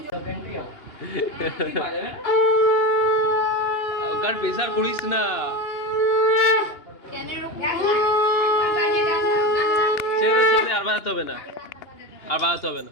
ওকার প্রেসার করিস না, ছেড়ে ছেড়ে আর বাড়াতে হবে না, আর বাড়াতে হবে না।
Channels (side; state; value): right; late; 2.9 ms